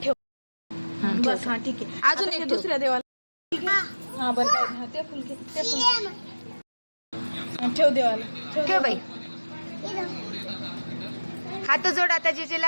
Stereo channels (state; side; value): inverted; both; correlation -1.00